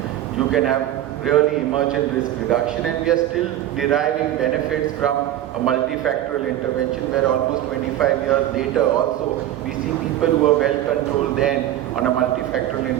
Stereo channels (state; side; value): quieter; left; 12.8 dB